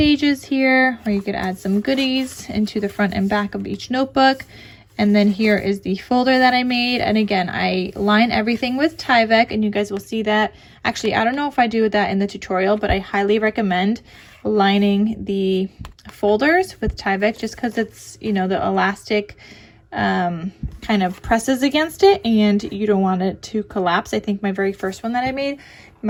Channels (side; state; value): both; identical; correlation 1.00